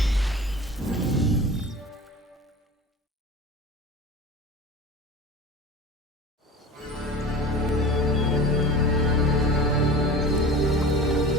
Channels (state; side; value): normal; both; correlation 0.35